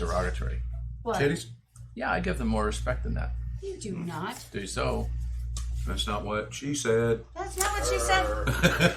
What? Titties? Yeah, I give them more respect than that. You do not. Do so. That's not what she said. That's not what she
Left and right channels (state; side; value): identical; both; correlation 1.00